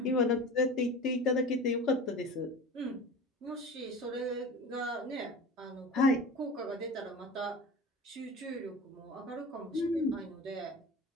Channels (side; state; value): both; normal; correlation 0.35